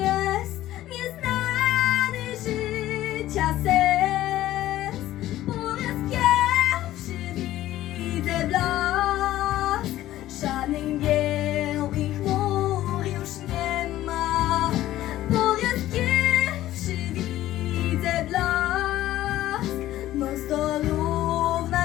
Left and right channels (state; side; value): quieter; right; 14.3 dB